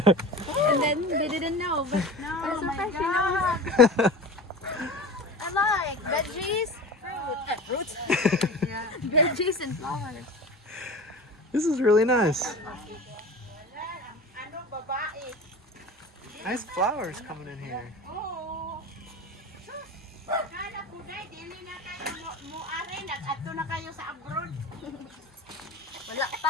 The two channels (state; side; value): normal; both; correlation 0.34